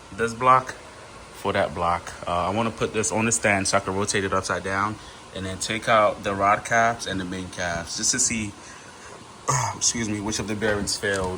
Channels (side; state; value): both; identical; correlation 1.00